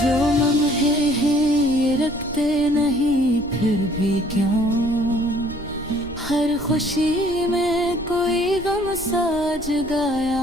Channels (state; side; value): noise; right; rumble, 16 dB below the sound